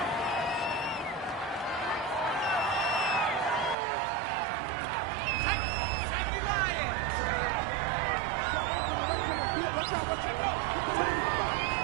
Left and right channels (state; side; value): drops out; left; at 3.8 s